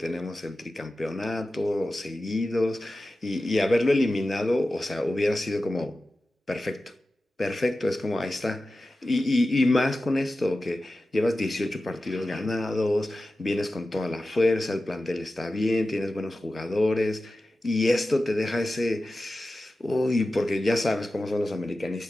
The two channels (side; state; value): both; normal; correlation 0.94